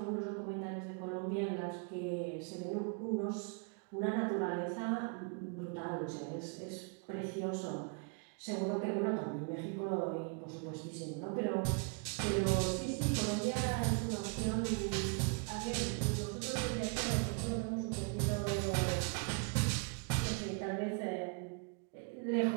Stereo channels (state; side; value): quieter; left; 36.3 dB